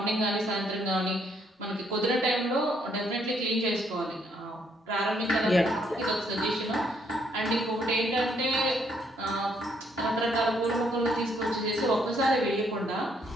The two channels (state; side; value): normal; both; correlation 0.70